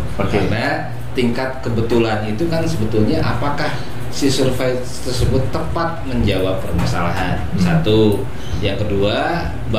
Karena tingkat kebetulan itu kan sebetulnya apakah si survei tersebut tepat menjawab permasalahan. Satu, yang kedua,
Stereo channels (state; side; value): identical; both; correlation 1.00